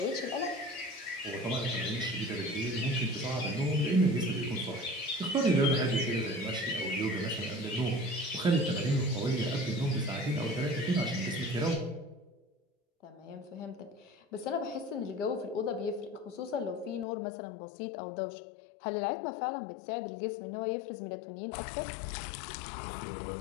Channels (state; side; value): drops out; right; at 17.1 s